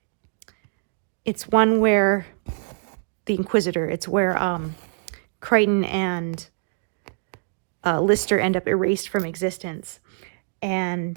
it's one where the Inquisitor, it's where Crichton and Lister end up erased from existence.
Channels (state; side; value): silent; left; digital silence